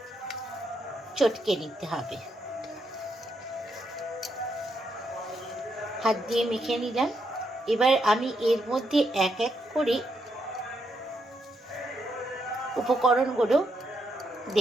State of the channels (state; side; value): normal; both; correlation 0.79